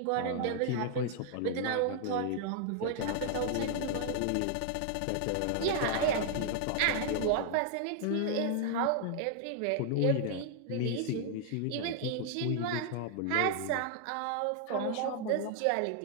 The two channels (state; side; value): different; both; correlation 0.00